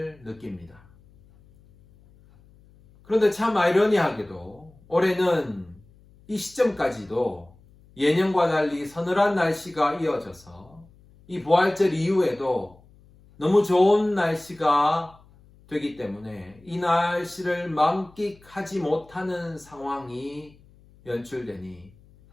느낍니다. 그런데 참 아이러니하게도 올해는 이 시점까지도 예년과 달리 서늘한 날씨가 이어져서 이 부활절 이후에도 너무 좋은 날씨가 되기 때문에 이 날씨를 만끽하지 못하는 상황이 연출되니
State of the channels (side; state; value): left; noise; hum, 27 dB below the sound